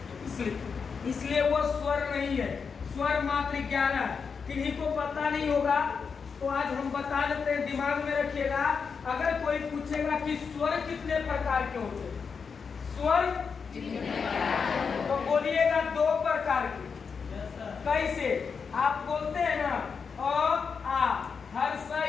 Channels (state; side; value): quieter; right; 5.7 dB